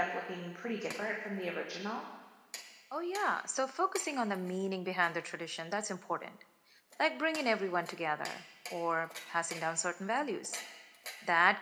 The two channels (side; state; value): both; identical; correlation 1.00